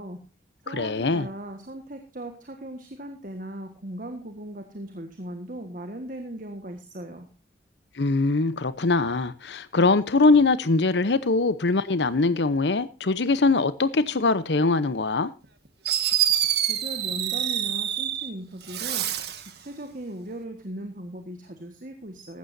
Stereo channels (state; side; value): normal; both; correlation 0.21